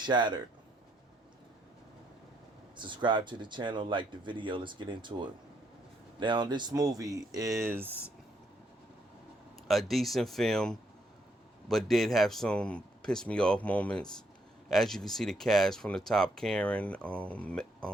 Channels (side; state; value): both; normal; correlation 0.74